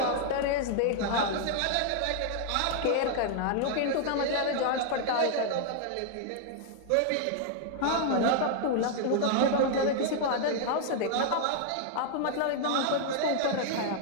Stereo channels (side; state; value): both; different; correlation 0.00